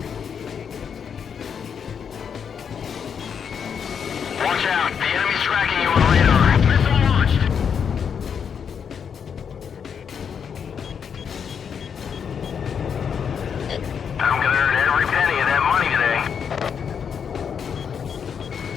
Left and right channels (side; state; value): right; quieter; 7.2 dB